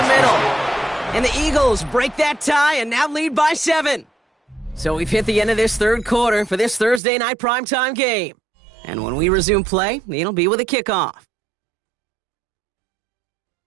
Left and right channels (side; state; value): left; drops out; at 7.0 s